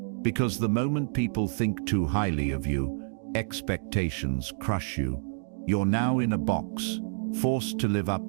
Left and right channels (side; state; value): left; silent; digital silence